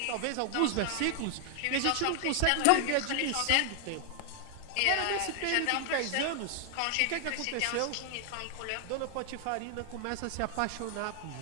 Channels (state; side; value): different; both; correlation 0.00